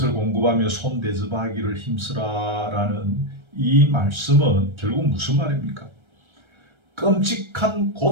공급하며 손 대접하기를 힘쓰라라는 이 말씀은 결국 무슨 말입니까? 끔찍한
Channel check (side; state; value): left; late; 1.3 ms